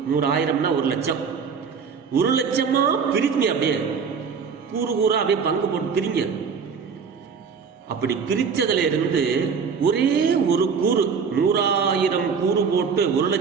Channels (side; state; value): left; quieter; 6.0 dB